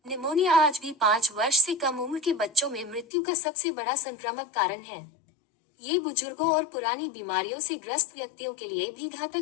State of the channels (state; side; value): drops out; right; at 3.1 s